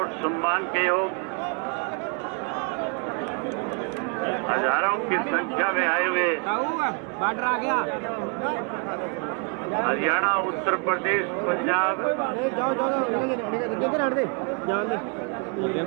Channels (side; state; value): left; quieter; 37.9 dB